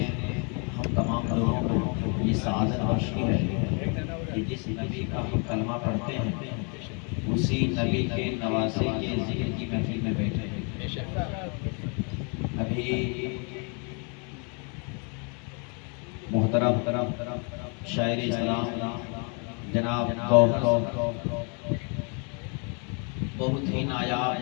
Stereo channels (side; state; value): right; quieter; 37.0 dB